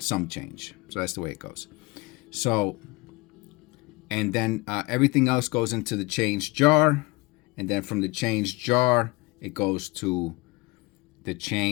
some change. So that's the way it goes. So, and then everything else goes into the change jar, and then from the change jar it goes to the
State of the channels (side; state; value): right; quieter; 24.1 dB